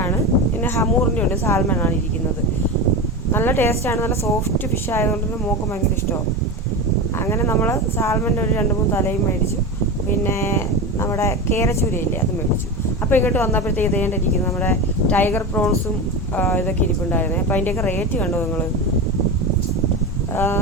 പിന്നെ ഹമൂറിൻ്റെ ഉണ്ട്, സാൽമണാണ് ഇരിക്കുന്നത്. നല്ല ടേസ്റ്റാണ്, നല്ല സോഫ്റ്റ് ഫിഷ് ആയതുകൊണ്ട് തന്നെ മോൾക്ക് ഭയങ്കര ഇഷ്ടമാണ്. അങ്ങനെ നമ്മൾ സാൽമൻ്റെ ഒരു 2-3 തലയും മേടിച്ചു. പിന്നെ നമ്മുടെ കേരച്ചൂരയില്ലേ, അത് മേടിച്ചു. അപ്പോൾ ഇങ്ങോട്ട് വന്നപ്പോഴത്തേക്ക് ഇതേണ്ടിരിക്കുന്നു നമ്മുടെ ടൈഗർ പ്രോൺസും ഇതൊക്കെ ഇരിപ്പുണ്ടായിരുന്നേ. അപ്പോൾ അതിൻ്റെയൊക്കെ റേറ്റ് കണ്ടോ നിങ്ങൾ?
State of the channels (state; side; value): normal; both; correlation 0.22